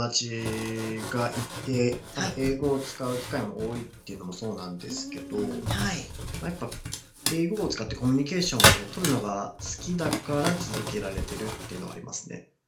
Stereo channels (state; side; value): identical; both; correlation 1.00